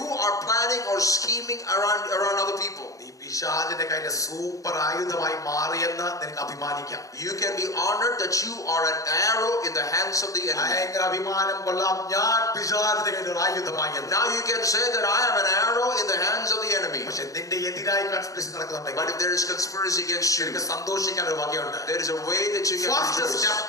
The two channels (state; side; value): late; right; 0.16 ms